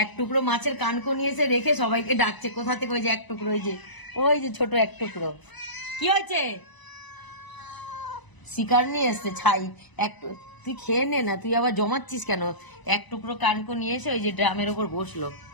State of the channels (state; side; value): late; right; 1.0 ms